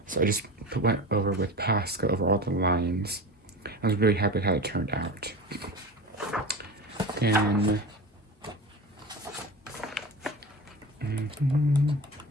so I just went over with Posca over all the lines. I was really happy with how it turned out. Then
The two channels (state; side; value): normal; both; correlation 0.30